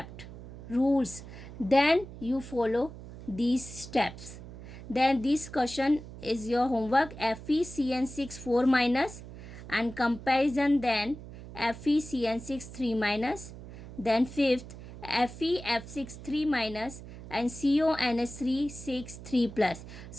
rules, then you follow these steps. Then this question is your homework, FeCN6 4 minus and comparison, then FeCN6 3 minus, then fifth FeF6 3 minus and CONS3 6 3 plus.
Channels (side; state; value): right; noise; hum, 14 dB below the sound